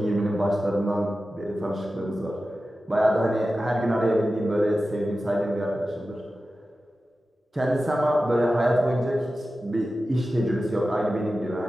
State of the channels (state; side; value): normal; both; correlation 0.94